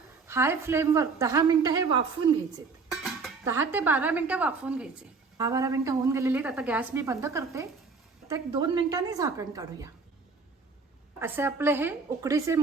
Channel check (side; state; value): left; quieter; 4.5 dB